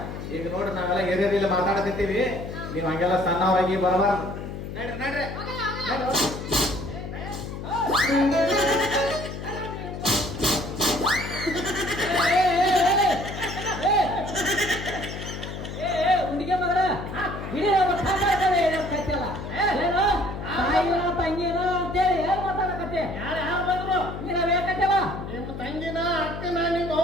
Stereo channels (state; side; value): noise; left; hum, 8 dB below the sound